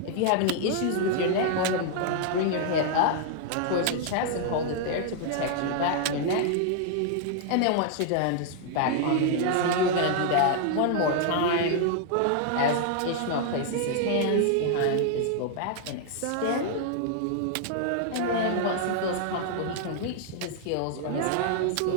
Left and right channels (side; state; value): both; different; correlation 0.00